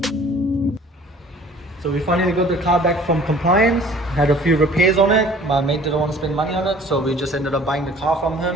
So we finally got the car back from compliance, had a few repairs on it. My mate didn't want to spend money on it, so we just ended up buying the car from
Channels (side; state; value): both; normal; correlation 0.51